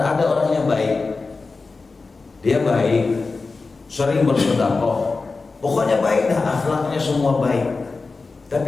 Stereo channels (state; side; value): quieter; right; 4.0 dB